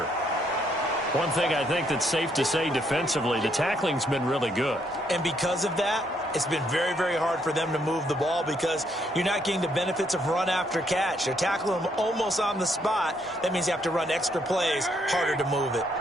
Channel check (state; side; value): normal; both; correlation 0.72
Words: One thing I think that's safe to say defensively, the tackling's been really good. And because of that, it's been very, very hard for them to move the ball because you're not getting the benefits of run after catch. They're tackling them almost on the spot. That means you have to run extra plays, harder to move it.